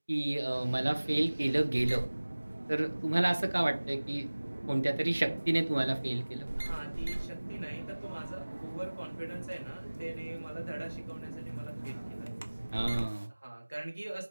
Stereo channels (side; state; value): both; inverted; correlation -1.00